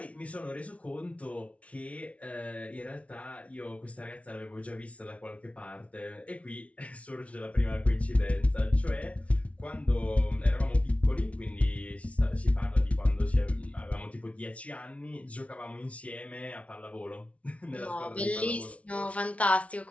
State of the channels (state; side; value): late; right; 0.064 ms